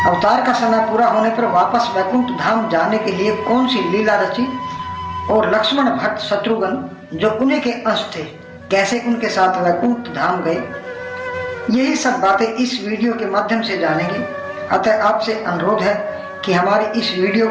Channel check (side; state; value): both; identical; correlation 1.00